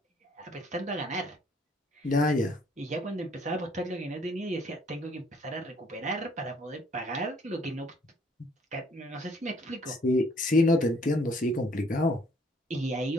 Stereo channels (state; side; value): normal; both; correlation 0.62